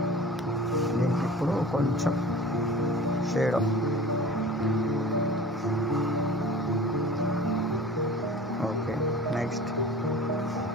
దీనికి ఇప్పుడు కొంచెం shade okay. Next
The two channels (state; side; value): normal; both; correlation 0.40